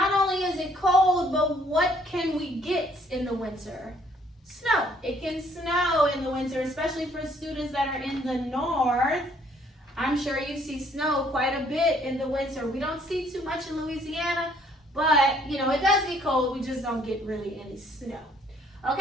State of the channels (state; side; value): normal; both; correlation 0.64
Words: only is it cold, but what can we get in the winter? Snow. It can snow in the winter, especially for students that are in the north. I'm sure you see snow quite a bit in the winter. We don't see too much in Louisiana, but, it does get cold. We just don't get really any snow.